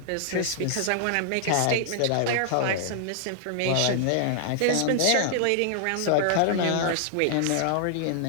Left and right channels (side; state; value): both; different; correlation 0.00